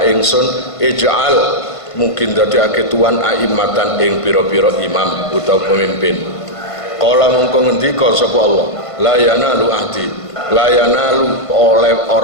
ingsun ij'al mungkin dadekake tuan aimatan ing pira-pira imam utawa pemimpin. Kala mongko ngendika sapa Allah, la yanalu ahdi, la yanalu oleh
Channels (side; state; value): right; late; 1.5 ms